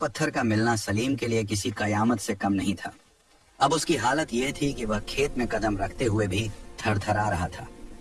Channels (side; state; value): both; identical; correlation 1.00